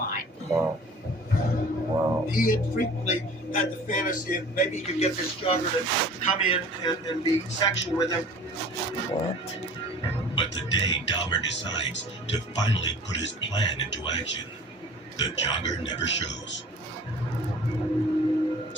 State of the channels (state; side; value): normal; both; correlation 0.45